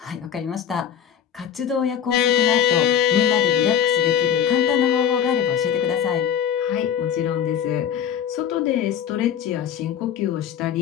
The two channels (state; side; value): quieter; right; 8.9 dB